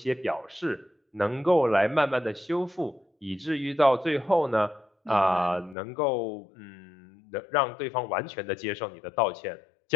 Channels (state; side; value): drops out; right; at 5.8 s